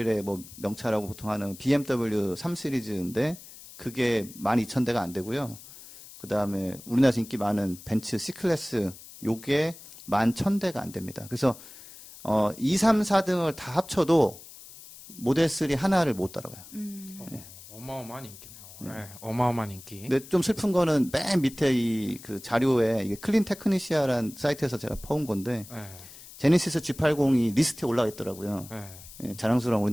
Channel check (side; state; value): left; noise; hiss, 18 dB below the sound